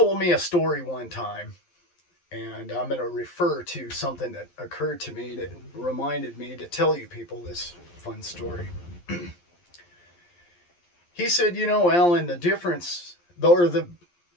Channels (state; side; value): late; right; 11 ms